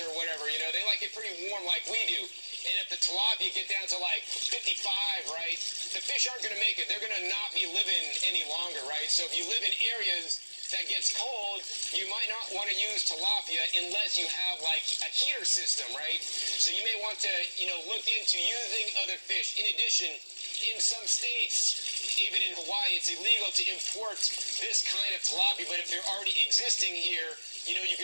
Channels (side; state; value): both; inverted; correlation -1.00